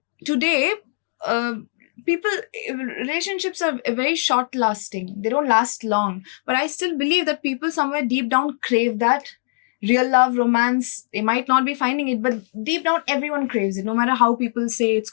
today, people relationships are very short lasting. They don't last long. But I still believe that people somewhere deep down crave that real love, romance. They might not be finding it, but deep down everyone craves it, no matter how people say it's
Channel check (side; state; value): right; silent; digital silence